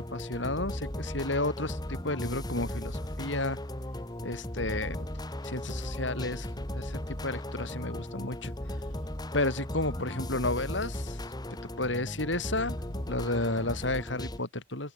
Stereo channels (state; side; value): normal; both; correlation 0.20